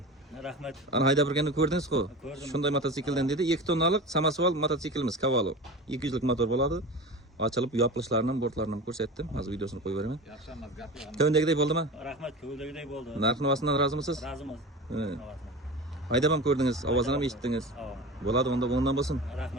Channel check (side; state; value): both; normal; correlation 0.31